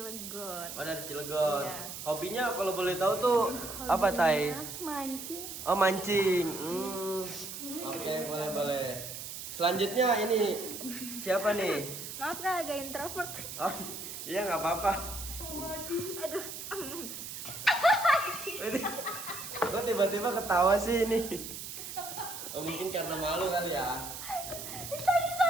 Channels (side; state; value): right; noise; hiss, 9 dB below the sound